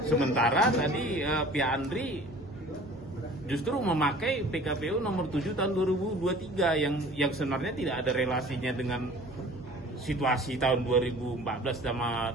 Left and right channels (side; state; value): both; normal; correlation 0.47